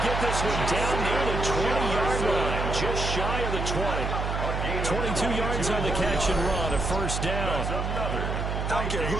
get this one down near the 20-yard line, just shy of the 20. 22 yards on the catch and run, a first down. I don't care who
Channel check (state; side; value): noise; right; hum, 2 dB below the sound